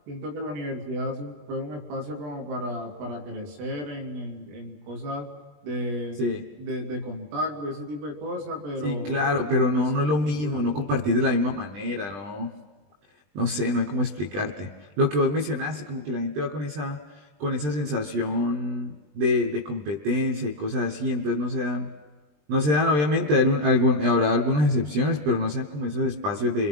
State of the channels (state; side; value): late; left; 20 ms